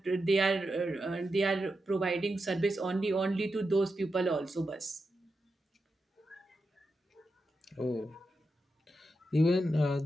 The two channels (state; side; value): normal; both; correlation 0.88